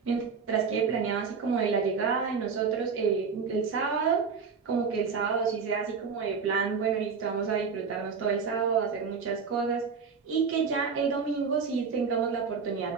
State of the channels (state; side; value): quieter; left; 5.6 dB